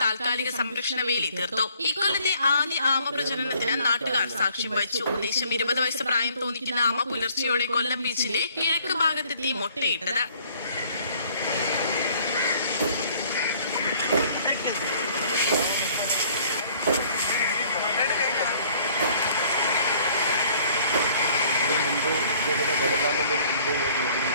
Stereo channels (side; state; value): both; inverted; correlation -0.58